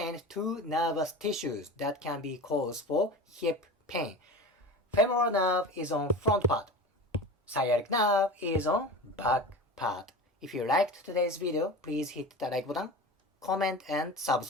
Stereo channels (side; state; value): both; normal; correlation 0.31